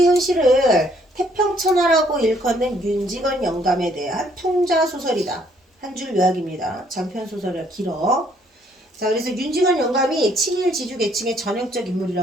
현실을 태평천하라고 일컫는 윤직원 영감에 대한 풍자소설이다. 한 줄 요약입니다. 장편소설이라 길어. 자, 그래서 윤직원 영감이 친일 지주 계층의 전형적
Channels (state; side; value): normal; both; correlation 0.66